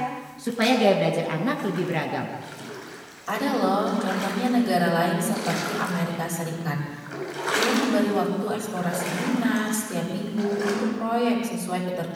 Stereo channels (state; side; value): identical; both; correlation 1.00